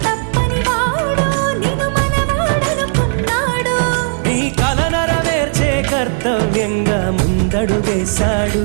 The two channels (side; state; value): left; silent; 60 dB below the other